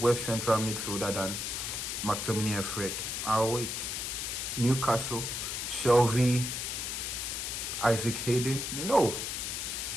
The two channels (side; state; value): left; noise; hiss, 3 dB below the sound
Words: central midfielder than McTominay and Fred. I'll wait. Newcastle, Shelby, Isaac Hayden, no.